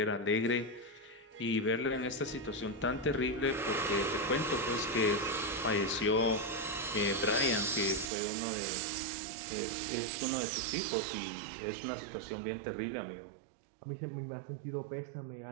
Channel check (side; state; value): left; drops out; at 8.1 s